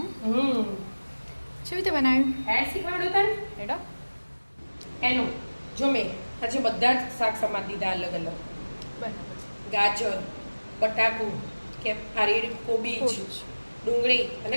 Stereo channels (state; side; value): inverted; both; correlation -1.00